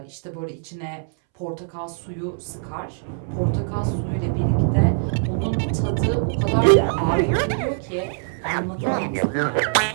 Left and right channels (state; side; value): silent; left; 64 dB below the other